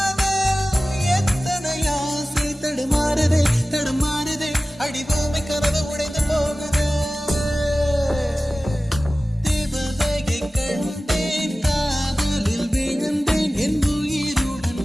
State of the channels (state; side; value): normal; both; correlation 0.96